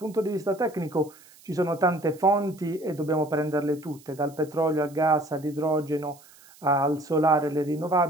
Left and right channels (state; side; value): noise; right; hiss, 25 dB below the sound